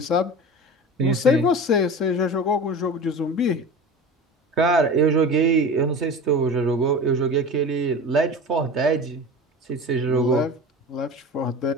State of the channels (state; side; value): normal; both; correlation 0.33